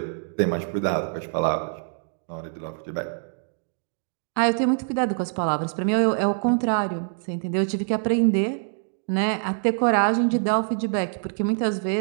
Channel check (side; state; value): left; silent; 62 dB below the other